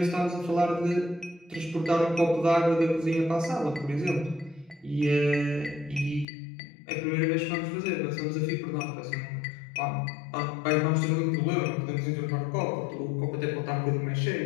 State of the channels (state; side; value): drops out; right; at 6.2 s